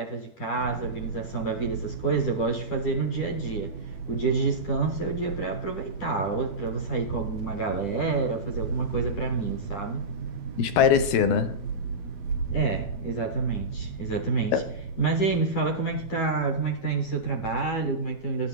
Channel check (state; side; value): late; right; 12 ms